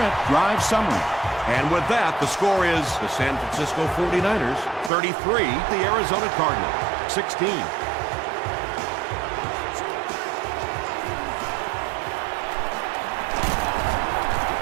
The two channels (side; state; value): left; drops out; at 4.9 s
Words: drive summary. And with that, the score is the San Francisco 49ers 33, the Arizona Cardinals 16.